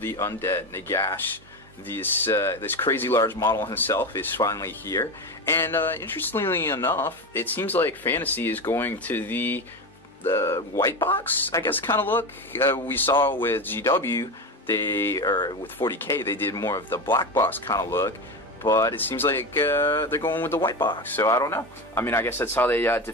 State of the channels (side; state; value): both; normal; correlation 0.21